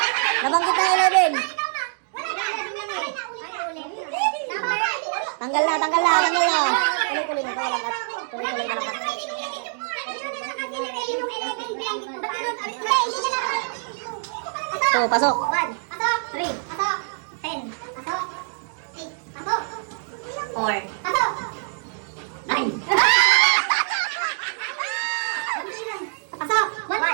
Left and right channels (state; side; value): silent; left; digital silence